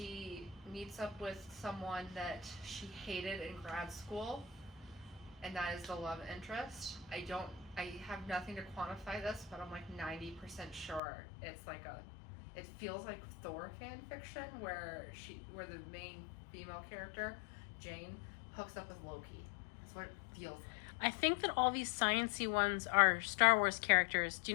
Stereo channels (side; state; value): right; drops out; at 11.0 s